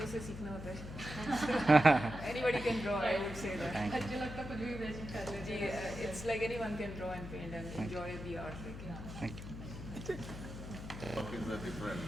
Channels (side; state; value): left; noise; hum, 10 dB below the sound